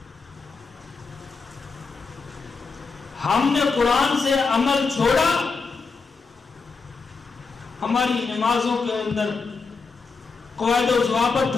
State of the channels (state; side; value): quieter; right; 4.6 dB